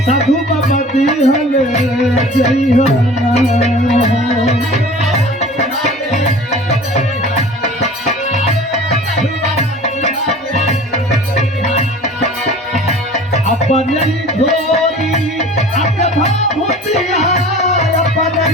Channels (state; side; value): normal; both; correlation 0.43